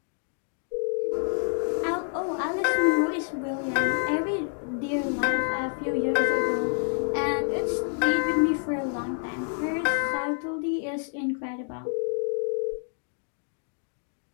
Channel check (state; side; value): silent; right; 59 dB below the other